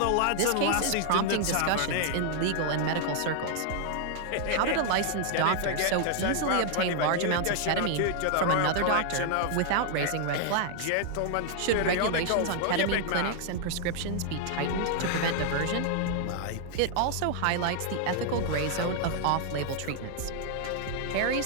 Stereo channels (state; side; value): different; both; correlation 0.00